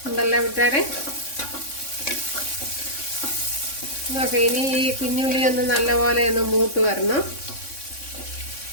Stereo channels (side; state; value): right; late; 3.6 ms